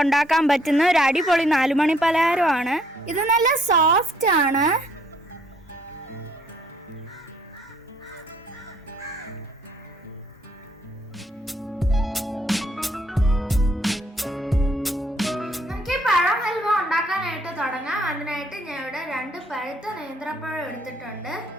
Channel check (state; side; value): normal; both; correlation 0.66